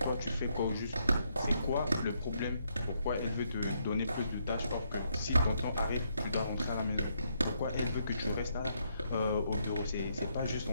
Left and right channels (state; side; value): inverted; both; correlation -0.75